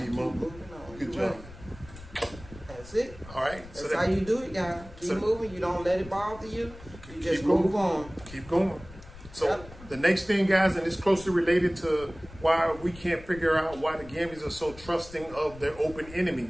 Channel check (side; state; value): left; noise; rumble, 18 dB below the sound